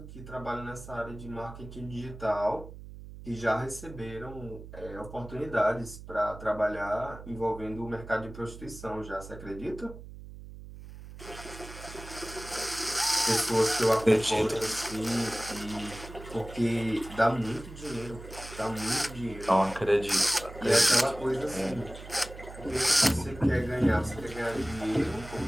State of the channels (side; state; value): right; noise; hum, 14 dB below the sound